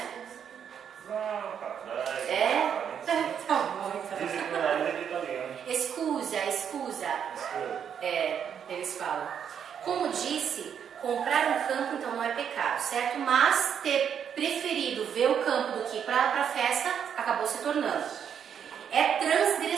Como disse, comprar um campo então não é pecado, certo? Mas ter preferido ver o campo do que ir para a festa acabou se tornando. É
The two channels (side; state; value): left; quieter; 8.1 dB